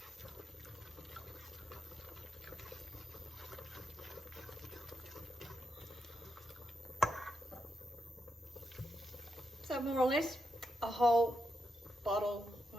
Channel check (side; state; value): both; normal; correlation 0.84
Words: So more or less a whole bottle,